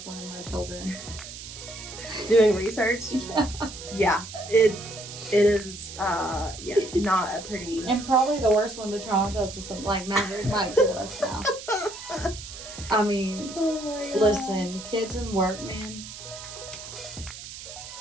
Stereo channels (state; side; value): noise; right; hiss, 12 dB below the sound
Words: one of my children. Doing research? Yeah. Yeah. It is not a pretty... And probably the worst one to traumatize is something like Maverick might kill us now. I mean, Oh my God. listen, kids and work, man.